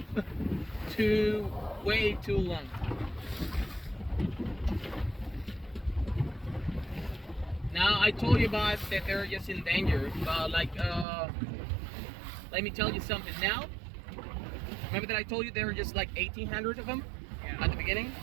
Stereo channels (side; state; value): left; drops out; at 11.1 s